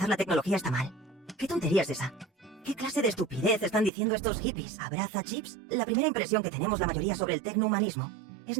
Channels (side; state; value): left; drops out; at 3.9 s